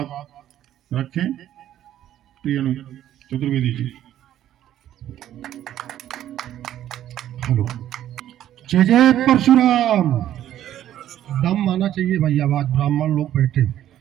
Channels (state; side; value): quieter; left; 11.9 dB